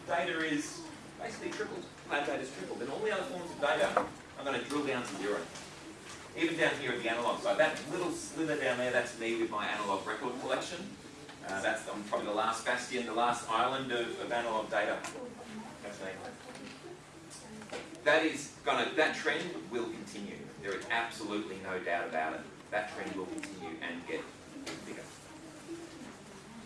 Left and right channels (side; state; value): both; identical; correlation 1.00